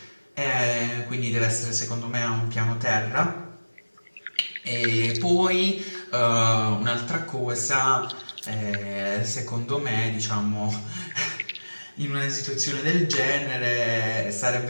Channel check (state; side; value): inverted; both; correlation -1.00